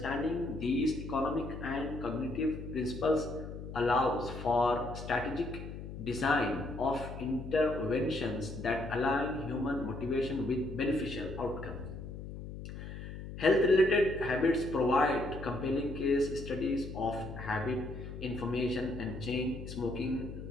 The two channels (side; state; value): left; noise; hum, 10 dB below the sound